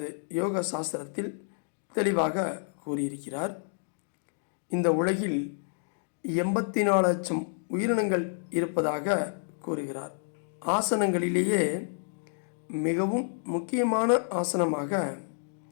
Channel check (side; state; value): right; silent; digital silence